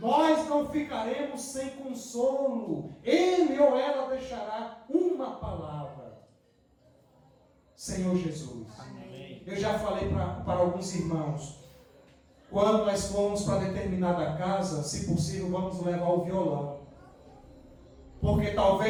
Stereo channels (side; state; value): both; identical; correlation 1.00